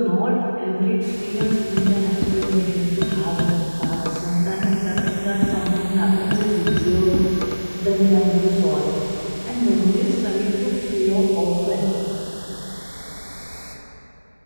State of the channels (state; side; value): inverted; both; correlation -1.00